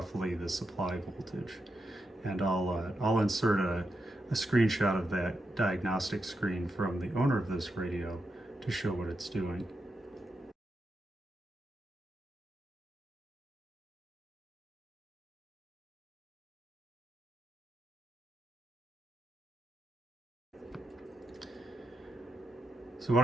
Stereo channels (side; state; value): both; normal; correlation 0.85